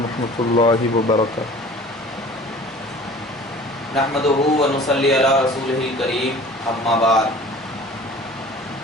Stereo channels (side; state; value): both; normal; correlation 0.45